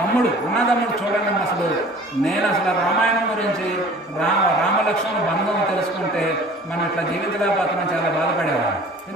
అన్నదమ్ముడు చూడండి, నేను అసలు రామాయణం గురించి రామలక్ష్మణ బంధం తెలుసుకుంటే మనం ఇట్లా జీవితలేకపోతున్నాం, చాలా బాధపడేవాడు.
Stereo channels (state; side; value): normal; both; correlation 0.47